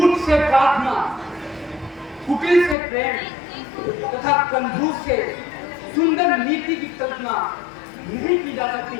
से प्रार्थना, कुटिल से प्रेम तथा कंजूस से सुंदर नीति की कल्पना नहीं की जा सकती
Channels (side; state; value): right; drops out; at 2.8 s